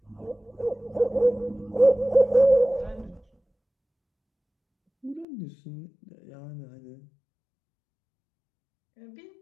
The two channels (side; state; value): right; drops out; at 5.2 s